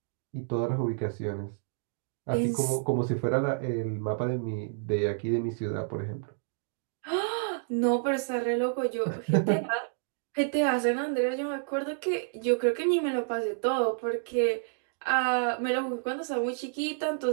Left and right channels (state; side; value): silent; left; digital silence